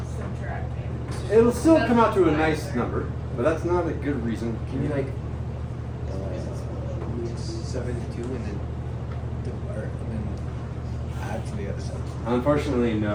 subtracting. It'll still That's come out to a why. nice number, but that's not a good reason. Can you like 7 to 2 and then add to the other side? Unfortunately,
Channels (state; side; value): identical; both; correlation 1.00